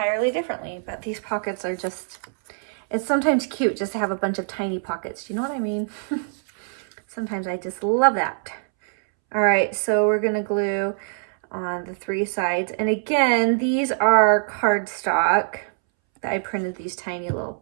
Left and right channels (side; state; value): left; silent; 63 dB below the other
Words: differently. But these pockets are just, it's sometimes cute just to have a bunch of tiny pockets. Do you know what I mean? Sometimes I just love that. All right, so we're gonna glue on the 3 sides. And again, these are cardstock that I printed these tiny little